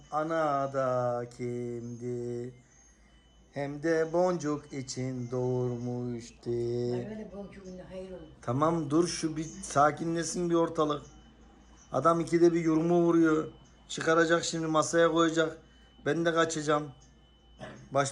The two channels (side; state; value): both; identical; correlation 1.00